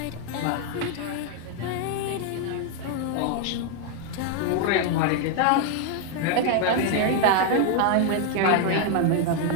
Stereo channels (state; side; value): different; both; correlation 0.00